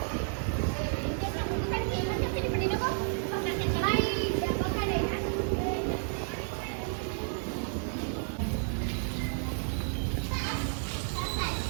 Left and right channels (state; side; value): silent; left; 57 dB below the other